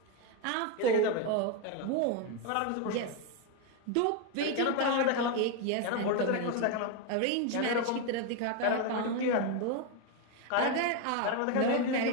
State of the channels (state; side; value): different; both; correlation 0.02